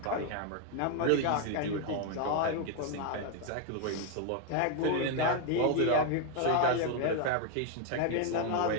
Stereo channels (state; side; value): different; both; correlation 0.00